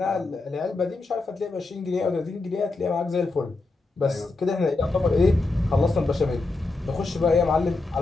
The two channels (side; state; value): right; quieter; 3.4 dB